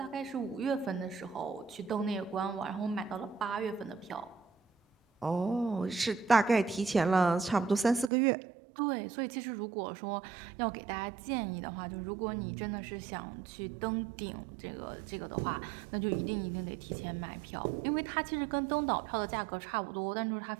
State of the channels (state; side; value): drops out; left; at 8.1 s